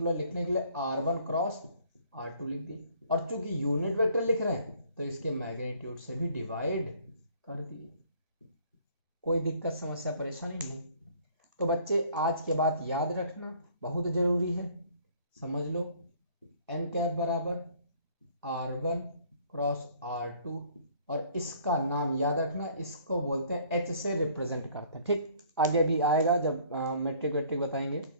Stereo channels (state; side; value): inverted; both; correlation -0.58